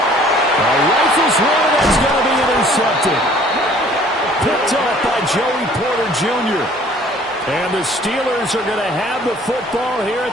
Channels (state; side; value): normal; both; correlation 0.55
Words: A rifle's one that's going to be intercepted. Picked off by Joey Porter Jr. And the Steelers are going to have the football here